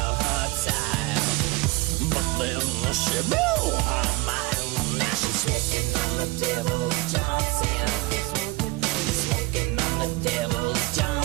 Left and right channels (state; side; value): quieter; left; 22.1 dB